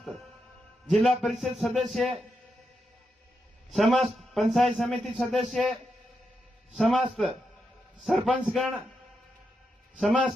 जिला परिषद सदस्य, समस्त पंचायत समिति सदस्य, समस्त सरपंचगण,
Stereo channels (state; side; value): normal; both; correlation 0.85